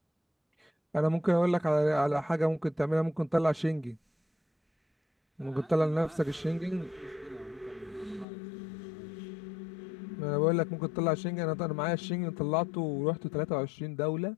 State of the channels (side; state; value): right; drops out; at 8.2 s